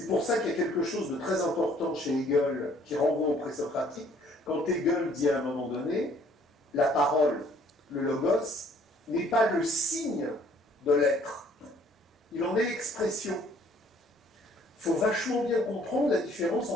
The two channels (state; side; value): normal; both; correlation 0.60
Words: pour ça qu'il y a quelque chose de très important chez Hegel qui renvoie au présocratique, quand Hegel dit à un moment donné, la parole, le logos, n'est pas le signe de l'être, il en est l'expression. Il faut vachement bien comprendre la différence